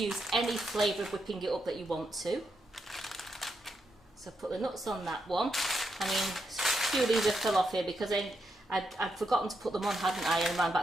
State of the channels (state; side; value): normal; both; correlation 0.82